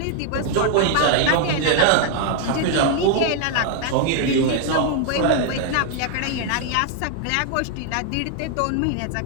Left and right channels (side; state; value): both; different; correlation 0.00